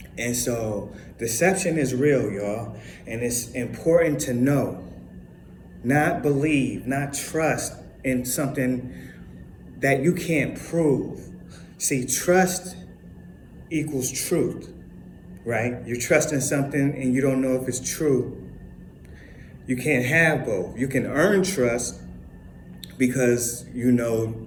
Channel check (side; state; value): both; identical; correlation 1.00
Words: And so deception is real, y'all, and it's important to know, not believe, not trust in something that you can't prove. See, trust equals truth, right? You're trusting something and you don't know if it's true. You can't have both. You can earn trust because you know